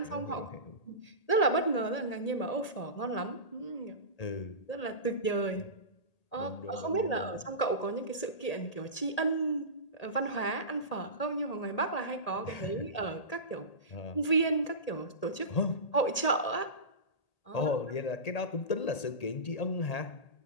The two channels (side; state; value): right; late; 1.8 ms